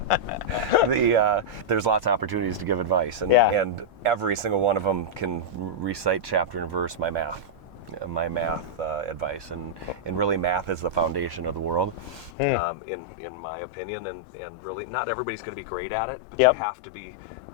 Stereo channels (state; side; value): drops out; right; at 12.3 s